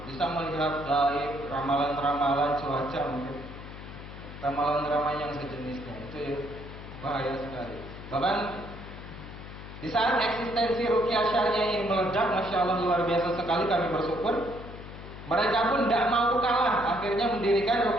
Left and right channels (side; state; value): left; noise; hum, 13 dB below the sound